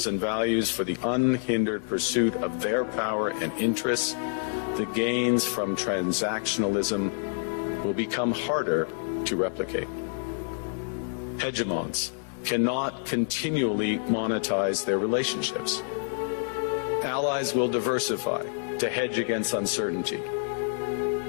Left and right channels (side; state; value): right; silent; 60 dB below the other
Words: and values for the unhindered pursuit of their power and interests, the gains from transactionalism will become harder to replicate. Hegemons cannot continually monetize their relationships. Allies will diversify to hedge against uncertainty.